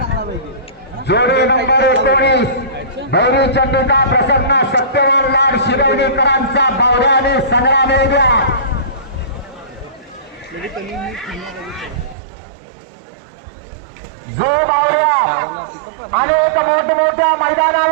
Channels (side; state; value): left; drops out; at 12.2 s